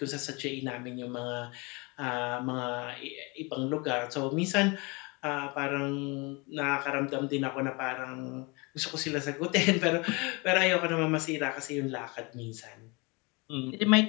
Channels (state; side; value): quieter; right; 27.9 dB